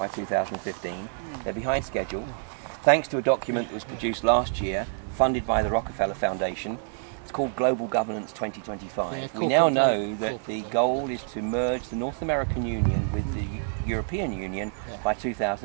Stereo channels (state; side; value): silent; left; digital silence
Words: 2015. They're behind schedule. Thanks to a document that was produced last year, funded by the Rockefeller Foundation. It's called Global Governance 2025. We now know that the goal is to merge the North American Union with the European Union by